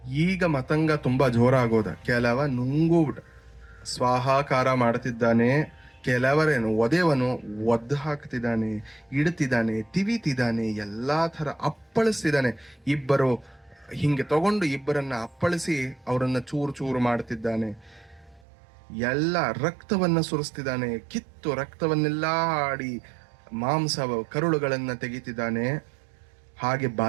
ಈಗ ಮತಂಗ ತುಂಬಾ ಜೋರಾಗೋದ. ಕೆಲವ ನುಂಗುಬಿಡ ಸ್ವಾಹಾಕಾರ ಮಾಡ್ತಿದ್ದಾನೆ, ಕೆಲವರೇನು ಒದೆವನು ಒದ್ದು ಹಾಕ್ತಿದ್ದಾನೆ, ಇಡ್ತಿದ್ದಾನೆ, ತಿವಿತಿದ್ದಾನೆ, ಎಲ್ಲಾ ತರ ಅಪ್ಪಳಿಸ್ತಿದ್ದಾನೆ. ಇಬ್ಬರು ಹಿಂಗೆ ತಗೊಂಡು ಇಬ್ಬರನ್ನ ಅಪ್ಪಳಿಸಿ ಅವರನ್ನ ಚೂರು ಚೂರು ಮಾಡ್ತಿದ್ದಾನೆ. ಎಲ್ಲ ರಕ್ತವನ್ನ ಸುರಿಸ್ತಿದ್ದಾನೆ, ಕಿತ್ತು ರಕ್ತವನ್ನೆಲ್ಲ ಆಡಿ ಮಾಂಸ ಕರುಳುಗಳನ್ನ ತೆಗಿತಿದ್ದಾನೆ. ಹಾಗೆ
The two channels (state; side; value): drops out; left; at 18.4 s